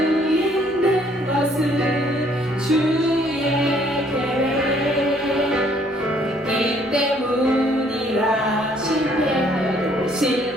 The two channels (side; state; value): both; normal; correlation 0.63